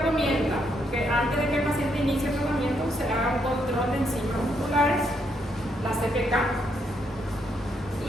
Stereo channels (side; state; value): both; normal; correlation 0.75